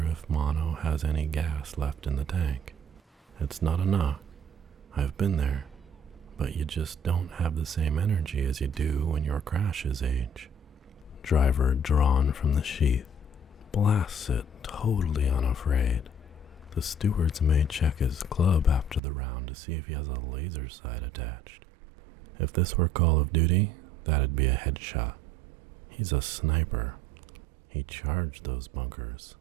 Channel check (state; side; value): drops out; left; at 19.0 s